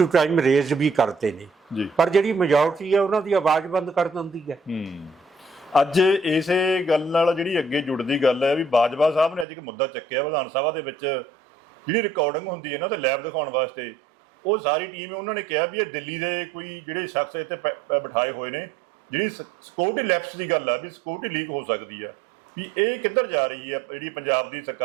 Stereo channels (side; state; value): left; drops out; at 9.5 s